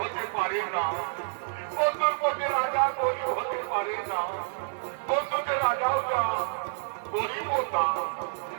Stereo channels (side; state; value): left; silent; digital silence